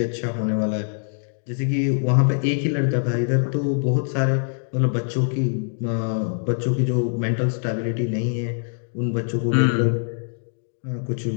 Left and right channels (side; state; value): right; silent; digital silence